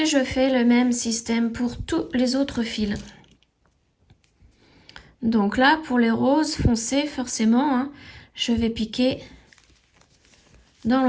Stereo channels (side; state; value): both; identical; correlation 1.00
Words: je fais le même système pour tous les autres fils. Donc là, pour les roses foncés, forcément, hein, je vais piquer dans